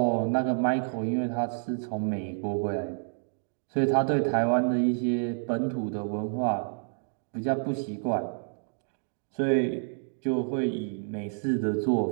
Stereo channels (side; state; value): left; silent; digital silence